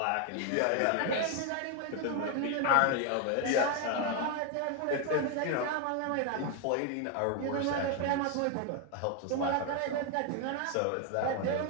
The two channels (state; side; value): different; both; correlation 0.01